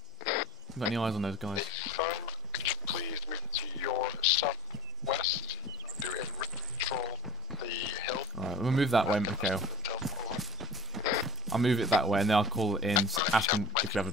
Got any eyes on those guys? Could you please move to your southwest? Do a control the hill. Alright, we'll move that way, Mikhail. I'll move it that way, and then I'll call it in, ask him if you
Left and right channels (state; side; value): normal; both; correlation 0.55